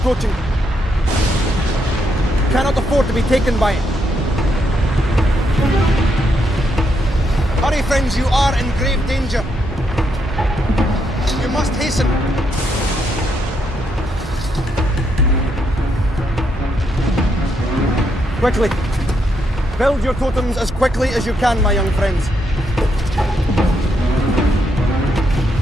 You cannot afford to be taken by it. Hurry, friends, you are in grave danger. You must hasten. Quickly. Build your totems as quickly as you can, my young friends.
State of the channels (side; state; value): both; normal; correlation 0.78